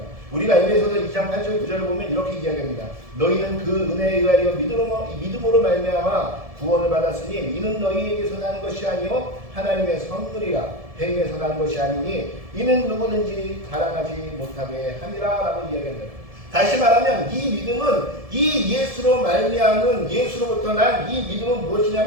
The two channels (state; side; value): late; left; 1.7 ms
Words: 우리가 에베소서 2장 8절 9절을 보면 이렇게 이야기합니다. 너희는 그 은혜에 의하여 믿음으로 말미암아 구원을 받았으니 이는 너희에게서 난 것이 아니요 하나님의 선물이라. 행위에서 난 것이 아니니 이는 누구든지 자랑하지 못하게 함이라 라고 이야기합니다. 다시 말하면 이 믿음은 이 예수로 말미암은 예수로부터 난 이 믿음은